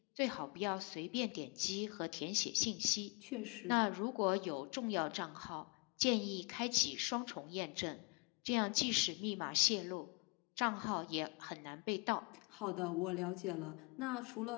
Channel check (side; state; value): right; quieter; 32.0 dB